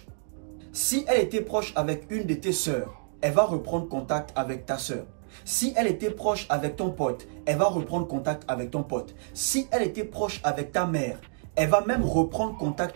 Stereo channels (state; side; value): silent; left; digital silence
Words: Si elle était proche avec une de tes sœurs, elle va reprendre contact avec ta sœur. Si elle était proche avec ton pote, elle va reprendre contact avec ton pote. Si elle était proche avec ta mère, elle va même reprendre